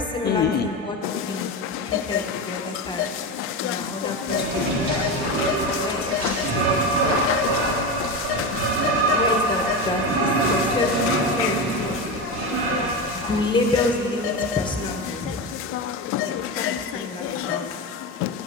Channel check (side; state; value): both; normal; correlation 0.19